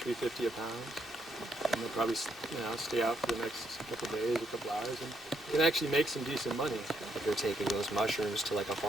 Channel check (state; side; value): normal; both; correlation 0.76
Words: a pound. And they'll probably, you know, stay out for the next couple of days, a couple hours, and can actually make some decent money. If they're taking those mushrooms to like a